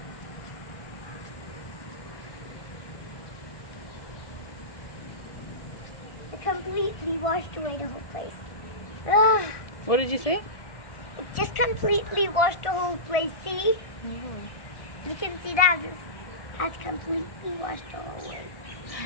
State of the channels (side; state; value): right; late; 1.6 ms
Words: It completely washed away the whole place. Ugh. What did you say? It just completely washed the whole place. See? You can see that it has completely washed the whole way.